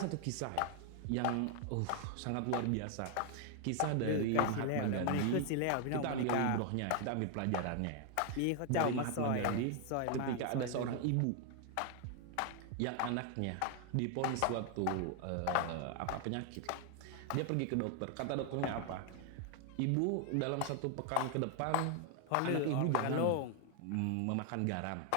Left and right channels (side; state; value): both; different; correlation 0.00